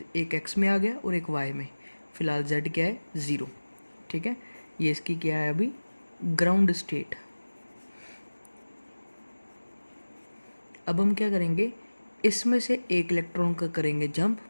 एक x में आ गया और एक y में। फिलहाल z क्या है, 0। ठीक है, ये इसकी क्या है अभी, ग्राउंड स्टेट। अब हम क्या करेंगे, इसमें से एक इलेक्ट्रॉन का करेंगे जंप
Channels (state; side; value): inverted; both; correlation -1.00